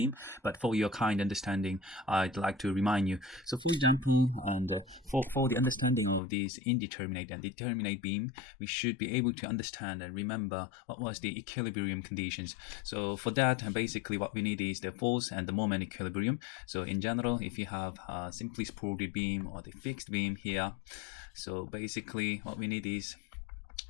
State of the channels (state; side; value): drops out; right; at 6.2 s